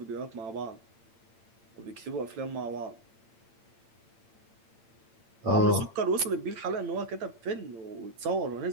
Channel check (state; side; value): late; left; 9.2 ms